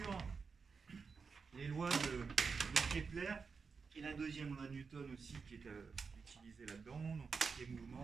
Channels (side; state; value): left; quieter; 5.2 dB